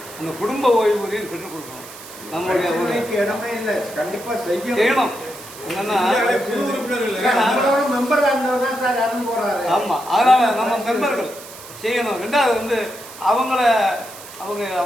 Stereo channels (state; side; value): noise; right; hiss, 16 dB below the sound